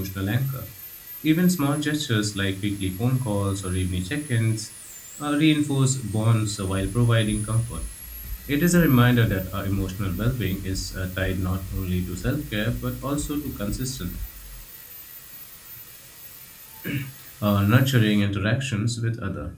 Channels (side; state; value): both; identical; correlation 1.00